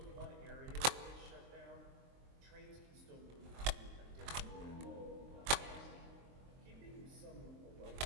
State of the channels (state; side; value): late; left; 23 ms